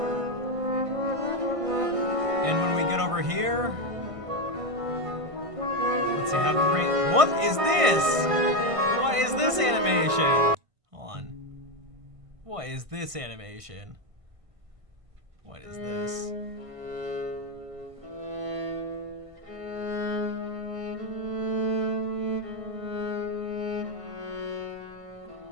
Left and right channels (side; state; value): left; late; 1.5 ms